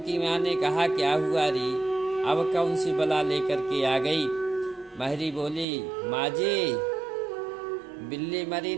माँ ने कहा, क्या हुआ री, अब कौन सी बला लेकर के आ गई। महरी बोली, माँ जी, बिल्ली मरी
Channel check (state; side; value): drops out; left; at 5.7 s